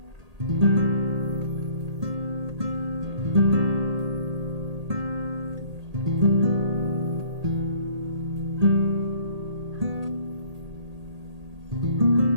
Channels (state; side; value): late; left; 1.8 ms